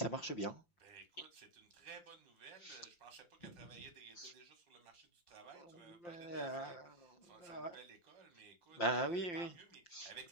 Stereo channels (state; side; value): late; right; 5.7 ms